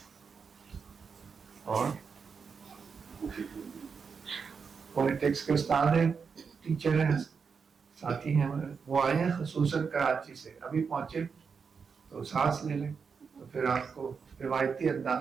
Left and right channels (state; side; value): quieter; left; 5.8 dB